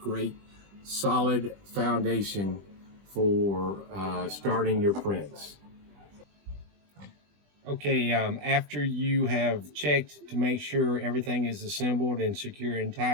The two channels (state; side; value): late; left; 20 ms